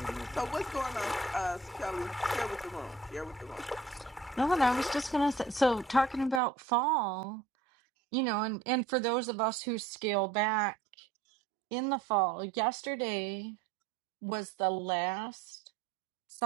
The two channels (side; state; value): left; drops out; at 6.4 s